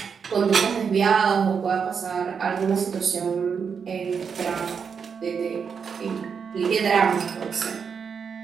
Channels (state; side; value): quieter; left; 6.4 dB